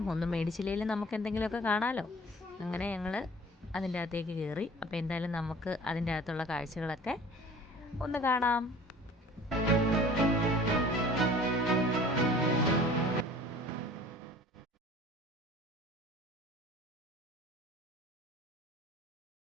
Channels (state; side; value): normal; both; correlation 0.46